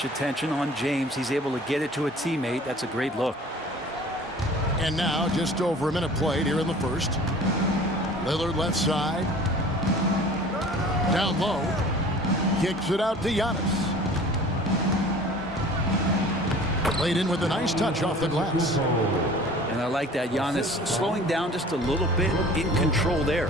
attention on James. He's able to get it to a teammate. That's a great look. And now, just over a minute played here in the first. Lillard left side. Down low. Kicks it out to Giannis. Played in with a nice touch off the glass. And I like that. Giannis slowing down just a little bit, in control there.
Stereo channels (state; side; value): normal; both; correlation 0.46